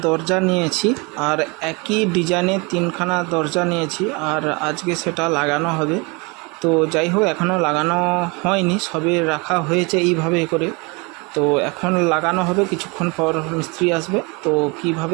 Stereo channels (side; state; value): left; quieter; 28.7 dB